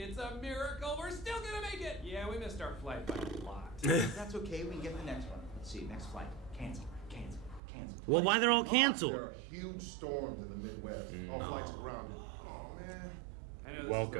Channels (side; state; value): left; drops out; at 7.6 s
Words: a miracle. We're still gonna make it. Yeah, we missed our flight by a lot. That's okay, we can get the next one. Let's see, next flight. Cancel. Well, why they're all There canceled? are huge storms in the Midwest. All flights are grounded. Oh man. I know this is Welcome. the